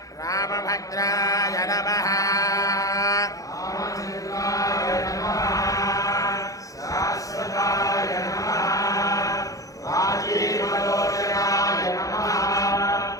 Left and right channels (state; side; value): late; right; 0.17 ms